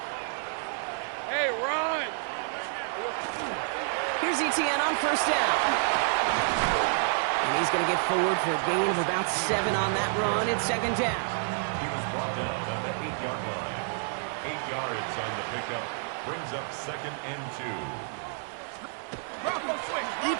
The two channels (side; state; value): left; silent; 59 dB below the other